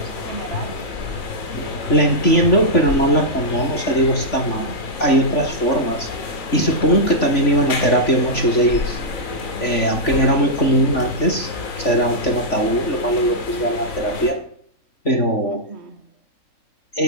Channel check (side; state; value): right; late; 3.5 ms